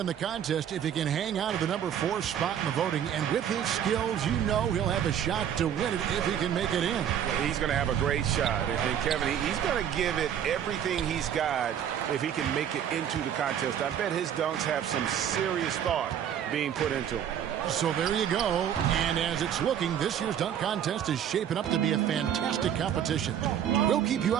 the contest if he can hang out of the number 4 spot in the voting. And with his skills, you know he'll have a shot to win it if he can make it in. He's going to have a great shot. And Kevin, he's going to give it everything he's got if he can make it into the contest. I bet his dunks have some serious thought being put into them. So there you go. And as it's looking, this year's dunk contest is shaping up to be a fantastic competition. We'll keep you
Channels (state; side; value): quieter; left; 9.4 dB